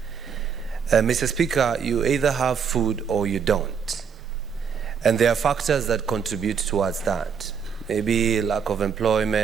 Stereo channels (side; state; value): left; quieter; 6.8 dB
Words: Mr. Speaker, you either have food or you don't. And there are factors that contribute towards that. Maybe lack of